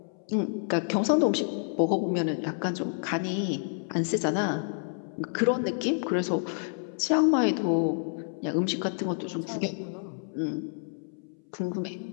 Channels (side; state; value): right; silent; 59 dB below the other